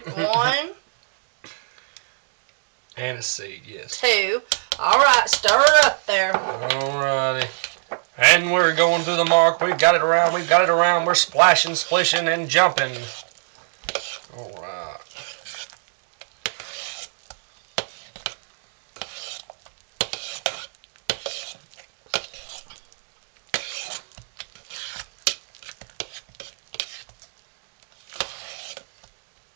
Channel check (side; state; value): left; silent; digital silence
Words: 1, Anise seed, yes. 2. All right, stir it up there. Alrighty. And we're going to the mark. We've got it around. We've got it around. We're splashing, splishing, and jumping. Alright.